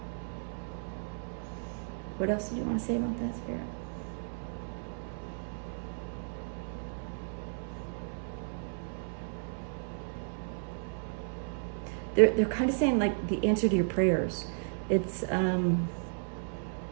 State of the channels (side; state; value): left; silent; 55 dB below the other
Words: What else did you want to say about that, Spirit? They're kind of saying like the answer to your prayers. It's